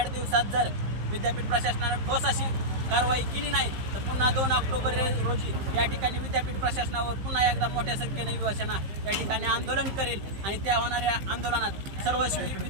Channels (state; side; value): late; left; 15 ms